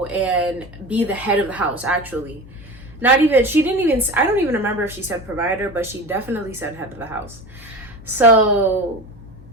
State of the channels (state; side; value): noise; left; hum, 19 dB below the sound